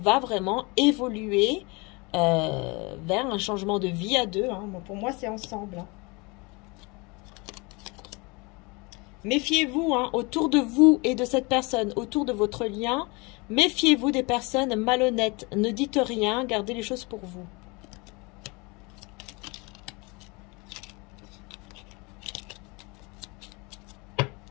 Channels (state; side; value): quieter; right; 27.5 dB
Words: vraiment évoluer vers un changement de vie à deux. Hein. Bon, pour moi, c'est ensemble. Hein. Méfiez-vous, hein, autour de vous et de cette personne, autour de votre lien. Méfiez-vous des personnes malhonnêtes. Ne dites rien, gardez les choses pour vous.